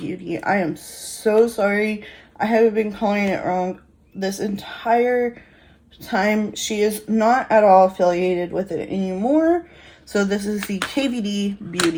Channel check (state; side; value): identical; both; correlation 1.00